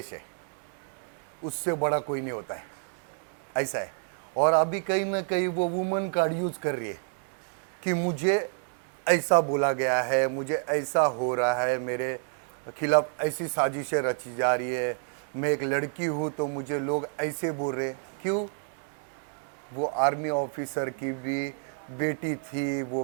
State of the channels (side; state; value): left; silent; 59 dB below the other